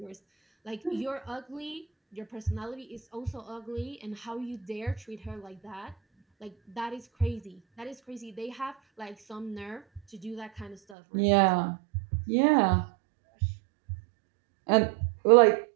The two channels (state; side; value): drops out; left; at 10.8 s